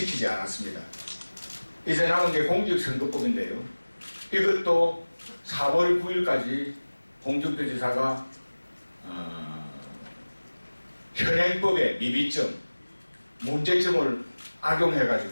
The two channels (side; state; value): both; inverted; correlation -1.00